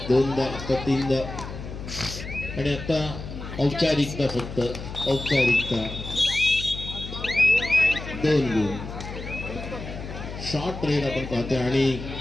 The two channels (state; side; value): noise; left; hum, 9 dB below the sound